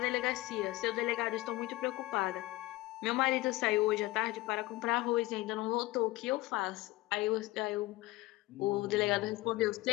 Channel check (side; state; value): right; quieter; 19.1 dB